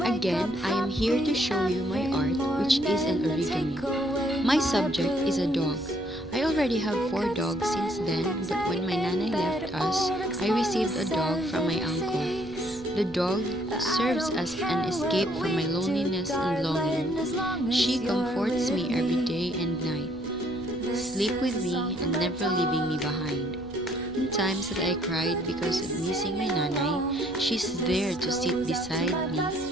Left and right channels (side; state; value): left; noise; rumble, 19 dB below the sound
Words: Again, I am here to show you my art, which is an origami. My subject is a dog. I already have 4 dogs since then, but when my nanay left us, I received a dog from my uncle. The dog serves as an escape from my loneliness and longing. She comforts me every day and night, sleep with me and never leaving me behind. In times that I cried because of missing my nanay, she's there to sit beside me